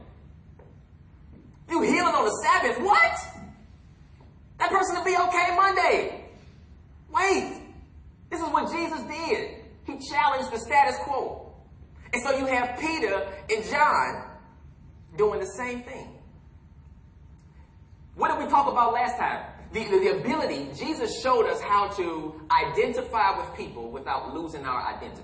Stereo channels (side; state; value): both; identical; correlation 1.00